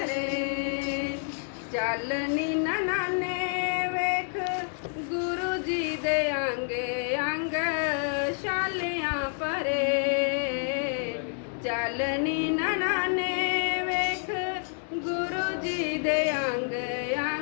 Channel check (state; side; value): silent; right; 57 dB below the other